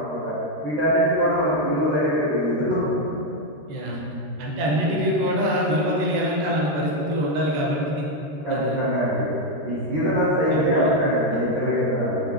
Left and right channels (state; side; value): late; left; 13 ms